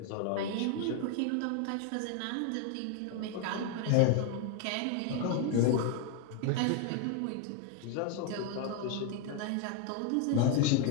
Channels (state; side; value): different; both; correlation 0.01